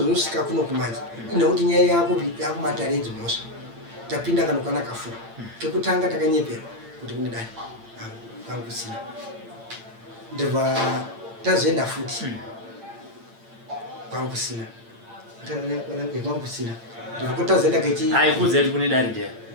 kuno kumanje inokuti nyaya yakumataredzi mhosva tapinda kana kwana kafura kekutanga takanyeperwa kuti kune dani kwangu kusina ndobva tazoenda futi kwangu kusina kwangu kusina ndokutazoenda kechi aikudze kune dani ndiye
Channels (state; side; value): late; left; 8.8 ms